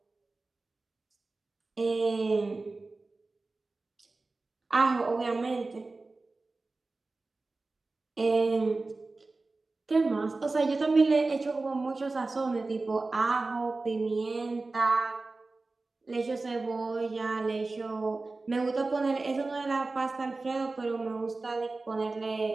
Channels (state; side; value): quieter; left; 3.5 dB